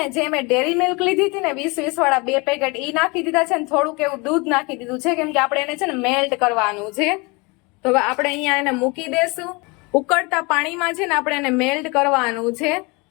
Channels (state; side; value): quieter; right; 27.4 dB